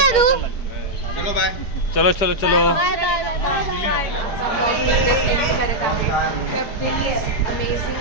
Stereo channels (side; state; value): right; late; 5.1 ms